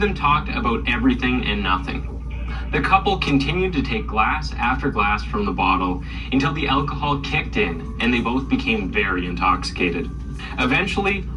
them talked about everything and nothing. The couple continued to take glass after glass from the bottle until the alcohol kicked in and they both became very intoxicated. Eventually,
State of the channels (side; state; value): both; identical; correlation 1.00